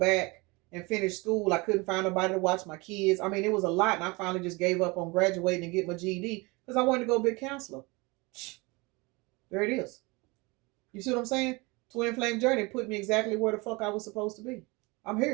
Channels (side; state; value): left; quieter; 25.7 dB